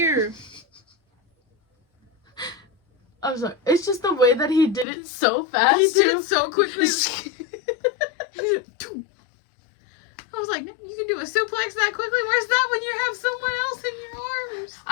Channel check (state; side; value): drops out; right; at 4.9 s